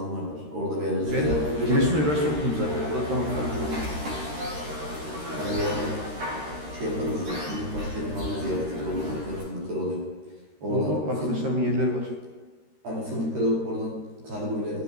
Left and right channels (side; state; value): left; late; 13 ms